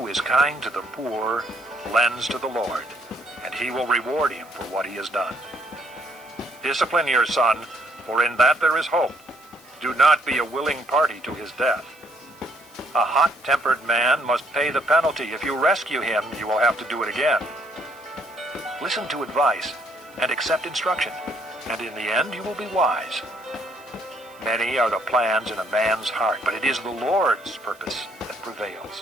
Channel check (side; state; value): right; noise; hiss, 27 dB below the sound